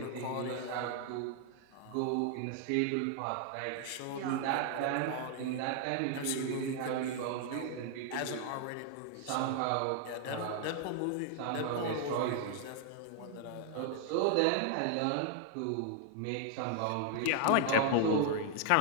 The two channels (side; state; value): both; different; correlation 0.00